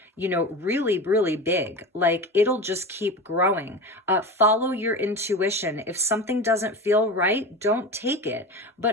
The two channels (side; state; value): both; normal; correlation 0.28